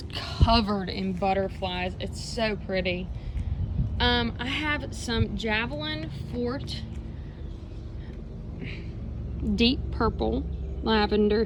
covered in butterflies. It's so pretty. I have some Javelin Fort deep purple lavender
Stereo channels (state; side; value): identical; both; correlation 1.00